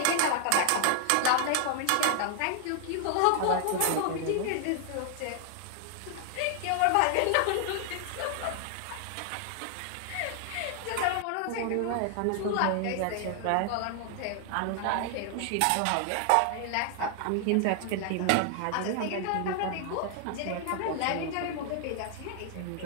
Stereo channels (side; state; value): both; different; correlation 0.00